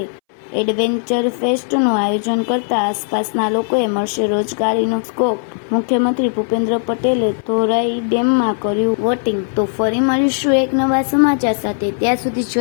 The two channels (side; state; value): right; silent; 64 dB below the other